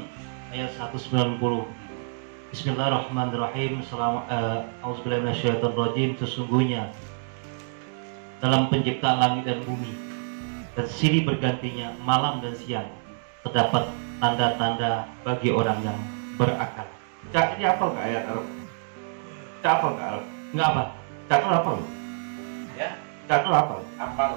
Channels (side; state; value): left; silent; digital silence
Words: ayat 190. Bismillahirrahmanirrahim. Auzubillahi minasyaitonirrajim. Sesungguhnya dalam penciptaan langit dan bumi dan silih bergantinya malam dan siang terdapat tanda-tanda bagi orang yang berakal. Cak, ini apa nggak ayat Arabnya? Cak apa nggak Arab? Enggak apa? Cak itu apa? Ya. Cak itu apa?